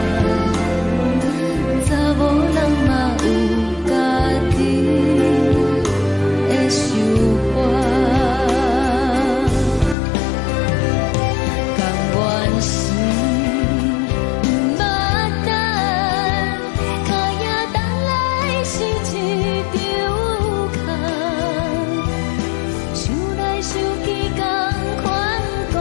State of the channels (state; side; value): drops out; right; at 10.0 s